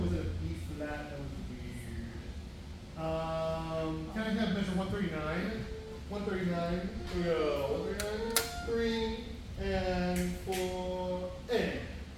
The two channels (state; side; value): identical; both; correlation 1.00